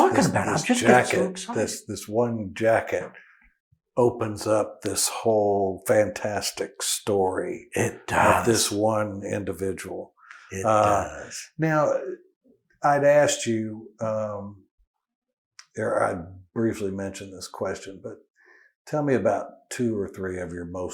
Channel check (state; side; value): identical; both; correlation 1.00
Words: about it. I'm just getting so excited. This one jacket opens up this whole fantastic story of this one individual. It does. Now, I'd asked you, I briefly mentioned this question, but tell me about 2 or 3 of your